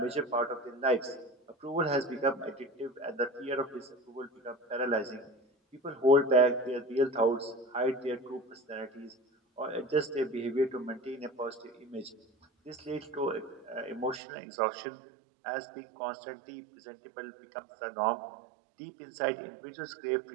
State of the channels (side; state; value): left; drops out; at 14.2 s